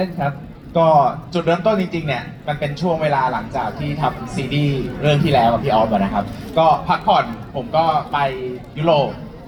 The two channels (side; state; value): both; identical; correlation 1.00